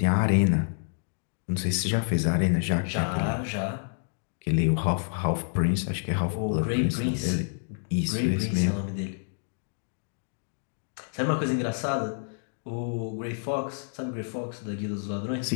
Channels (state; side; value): silent; right; digital silence